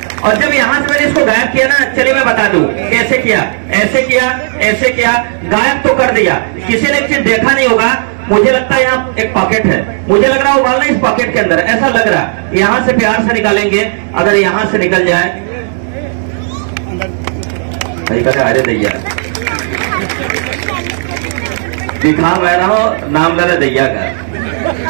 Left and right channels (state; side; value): silent; left; digital silence